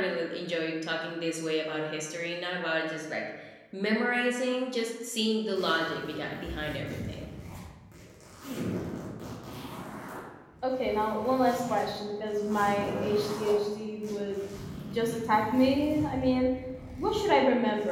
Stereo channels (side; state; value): both; identical; correlation 1.00